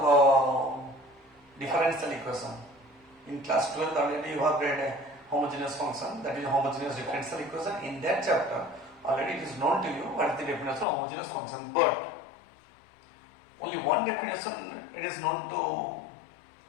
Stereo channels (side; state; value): right; drops out; at 10.9 s